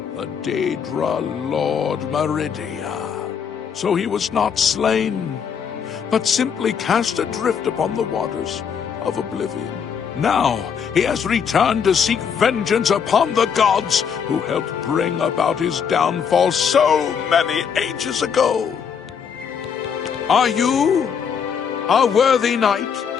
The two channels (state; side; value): quieter; right; 7.1 dB